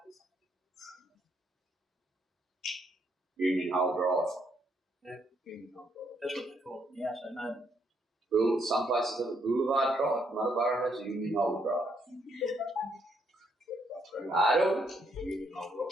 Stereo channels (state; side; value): normal; both; correlation 0.73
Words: this. Union Hole Drive. That's what they call it now, so no. Some places have a Boulevard Drive, Muttaburra has a Union Hole Drive. I don't. Union Hole